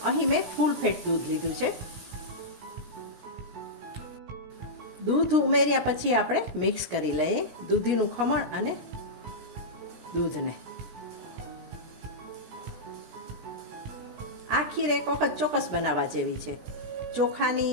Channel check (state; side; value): late; left; 17 ms